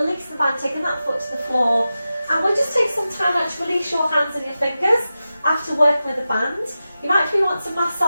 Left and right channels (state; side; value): inverted; both; correlation -0.93